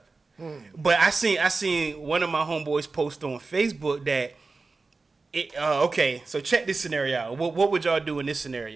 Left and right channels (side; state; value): left; quieter; 3.9 dB